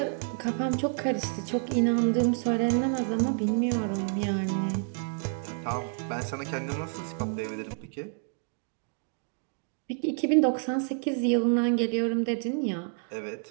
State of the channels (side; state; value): left; silent; 59 dB below the other